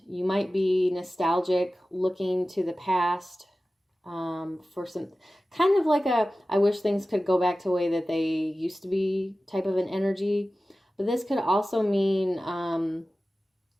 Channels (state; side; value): normal; both; correlation 0.95